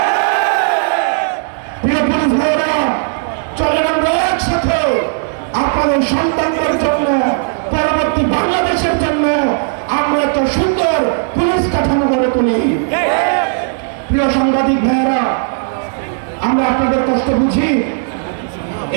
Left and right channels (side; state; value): left; silent; digital silence